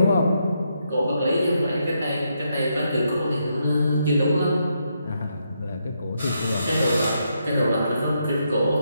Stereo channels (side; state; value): both; inverted; correlation -0.79